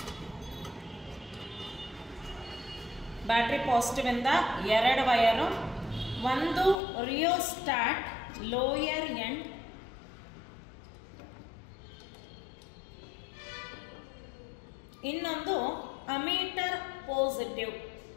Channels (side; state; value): right; drops out; at 6.8 s